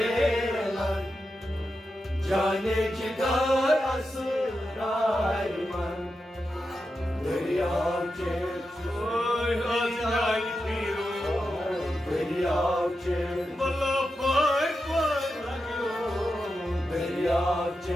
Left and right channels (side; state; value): both; normal; correlation 0.89